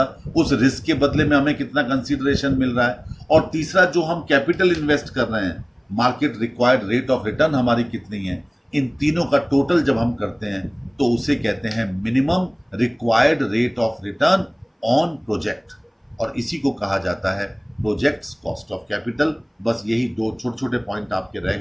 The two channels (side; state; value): both; identical; correlation 1.00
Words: उस रिस्क के बदले में हमें कितना कंसीडरेशन मिल रहा है, और तीसरा जो हम कैपिटल इन्वेस्ट कर रहे हैं, market required rate of return हमारी कितनी है, इन तीनों का टोटल जब हम करते हैं तो उसे कहते हैं minimum required rate of return on project, और इसी को कहा जाता है प्रोजेक्ट्स कॉस्ट ऑफ कैपिटल। बस यही दो छोटे छोटे पॉइंट आपके रह